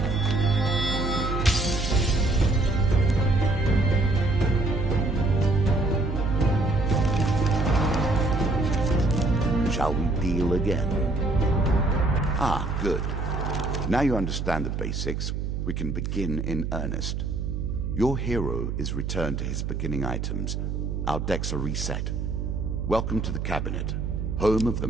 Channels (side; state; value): right; noise; hum, 3 dB below the sound